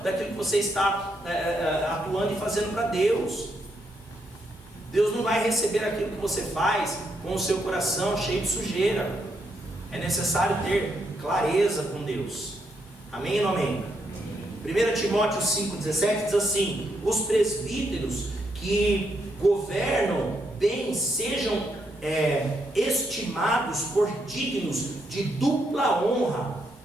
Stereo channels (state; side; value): normal; both; correlation 0.78